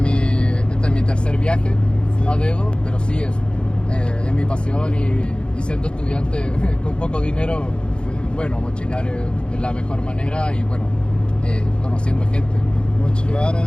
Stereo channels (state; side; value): late; right; 0.054 ms